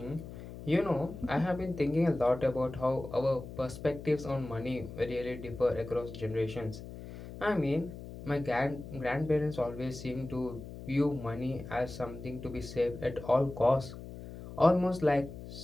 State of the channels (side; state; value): left; noise; hum, 12 dB below the sound